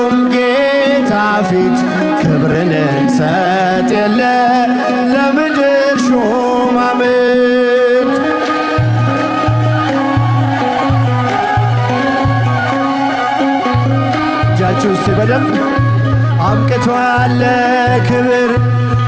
ጌታ ፊት ክብርን እንሰጥ የለ ለምድር ሹማምንት። እጃችሁ እስቲ በደንብ አብቅቷል ክብር።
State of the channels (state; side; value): identical; both; correlation 1.00